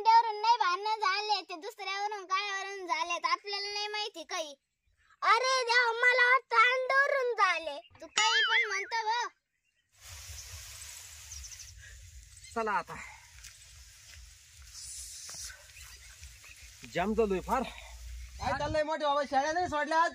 नाही भांडणं झाले, ते दुसऱ्यावरून कायावरून झालेत. आपल्याला नाही माहिती काही. अरे देवा मला वाटतं अंड्यावरून झाले. तू काही पण म्हणतो ग. चला आता जाम झालोय फार. काय चाललंय मोठे बाबा शाळा नाही सोडल्या आज?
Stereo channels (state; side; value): identical; both; correlation 1.00